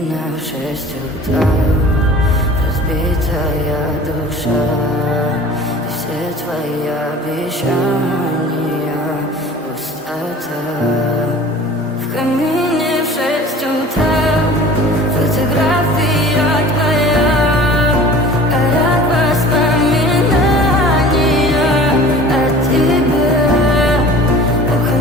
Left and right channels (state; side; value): normal; both; correlation 0.43